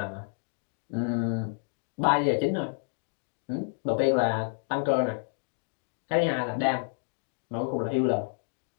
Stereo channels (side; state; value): right; silent; digital silence